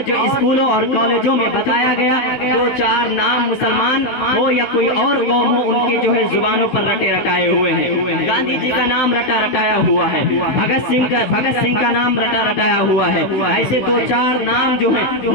جو اسکولوں اور کالجوں میں بتایا گیا 2-4 نام مسلمان ہو یا کوئی اور قوم ہو ان کے جو ہے زبانوں پر رٹے رٹائے ہوئے ہیں. گاندھی جی کا نام رٹا رٹایا ہوا ہے, بھگت سنگھ کا نام رٹا رٹایا ہوا ہے. ایسے 2-4 نام جو ہیں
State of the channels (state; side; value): late; right; 15 ms